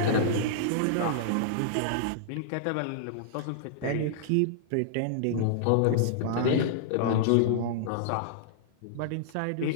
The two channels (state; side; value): different; both; correlation -0.02